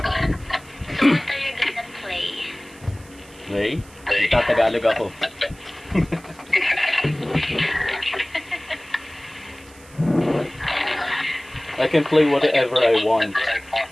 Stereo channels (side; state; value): right; noise; hiss, 24 dB below the sound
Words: So what are you gonna play? Hey? Tatagalog ako. I can play whatever I want.